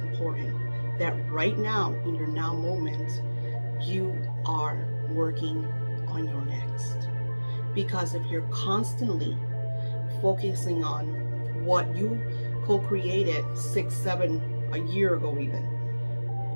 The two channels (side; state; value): both; inverted; correlation -1.00